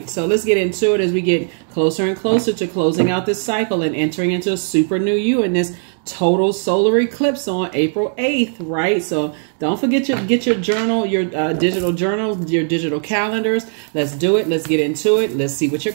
So let's get into it as we get closer and closer to closing out this cycle and entering into a super new you in this total solar eclipse on April 8th, right? So don't forget get your journal, your digital journal, your digital calendars. Let's do it. Let's get into it. Let's see what your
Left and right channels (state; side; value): silent; left; 58 dB below the other